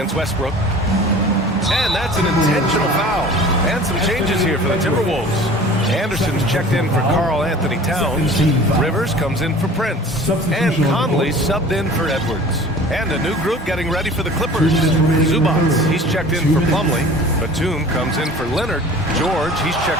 Westbrook. And that's an intentional foul. And some changes here for the Timberwolves. Anderson's checked in for Karl Anthony Towns. Rivers comes in for Prince. And Conley subbed in for Edwards. And a new group getting ready for the Clippers. Zubats, he's checked in for Plumlee. Batum comes in for Leonard. George, he's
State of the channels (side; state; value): both; normal; correlation 0.43